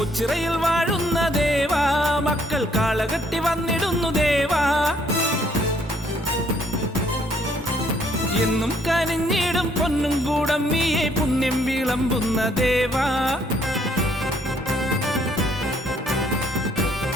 വാഴുന്ന ദേവാ മക്കൾ കാളകെട്ടി വന്നിടുന്നു ദേവാ എന്നും കനിഞ്ഞിടും പൊന്നും കൂടമ്മിയെ പുണ്യം വിളമ്പുന്ന ദേവാ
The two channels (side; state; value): both; normal; correlation 0.66